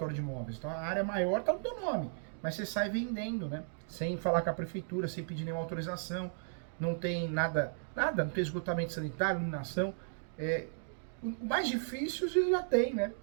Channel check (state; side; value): silent; left; digital silence